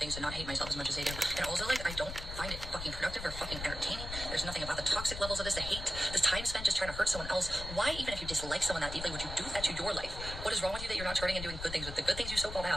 to not hate myself as much as they do. And also, like, I don't find it fucking productive or fucking entertaining. There's nothing about the toxic levels of this, the hate, this time spent just trying to hurt someone else. Why, even if you dislike someone that deeply, would you do that to your life? What is wrong with you that you're not turning and doing good things with the good things you so-called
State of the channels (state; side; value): noise; left; rumble, 8 dB below the sound